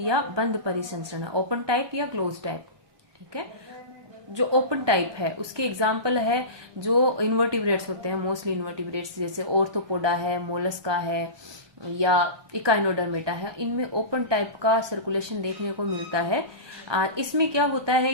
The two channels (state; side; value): late; left; 1.2 ms